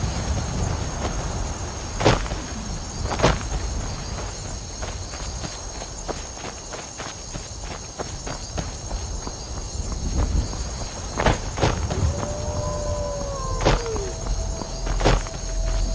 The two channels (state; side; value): identical; both; correlation 1.00